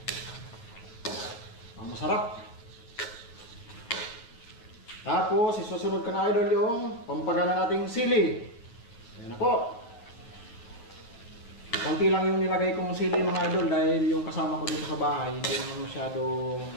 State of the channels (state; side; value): late; right; 9.1 ms